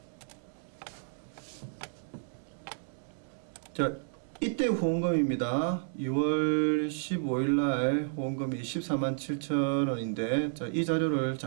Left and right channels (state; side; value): silent; left; digital silence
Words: 자, 이때 후원금입니다. 2월 15일날 후원금이 147,000원인데, 자, 이 자료를